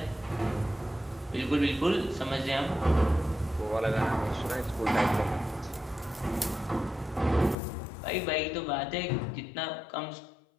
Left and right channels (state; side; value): drops out; right; at 7.6 s